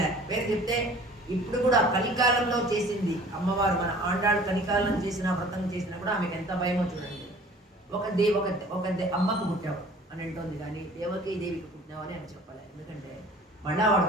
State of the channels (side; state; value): both; normal; correlation 0.49